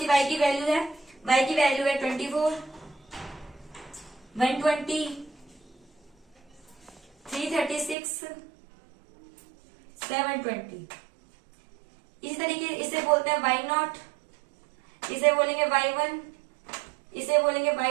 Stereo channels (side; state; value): left; drops out; at 8.0 s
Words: y की वैल्यू है। y की वैल्यू है 24, 120, 336, 720। इसी तरीके इसे बोलते हैं y नॉट, इसे बोलेंगे y1, इसे बोलेंगे